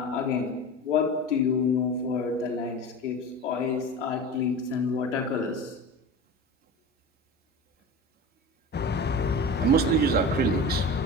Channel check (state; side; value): normal; both; correlation 0.31